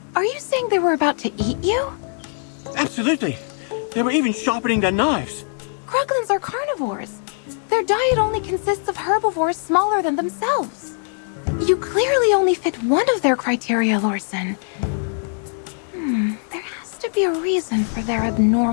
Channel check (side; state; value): right; silent; 65 dB below the other